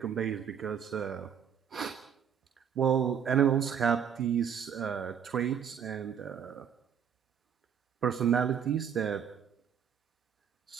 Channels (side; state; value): left; quieter; 8.0 dB